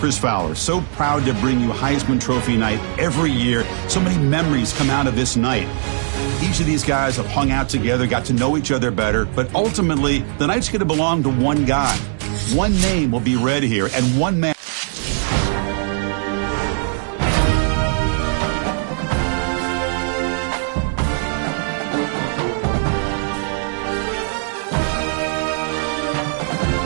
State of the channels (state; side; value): silent; left; digital silence